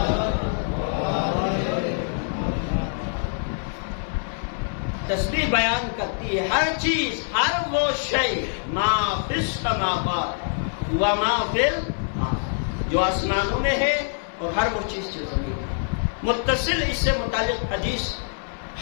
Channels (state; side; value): silent; right; 57 dB below the other